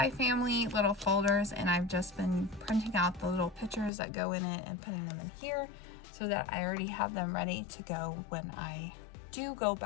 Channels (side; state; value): right; drops out; at 3.9 s